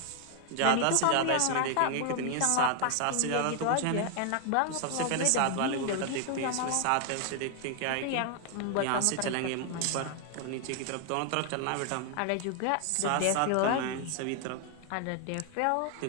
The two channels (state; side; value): different; both; correlation 0.00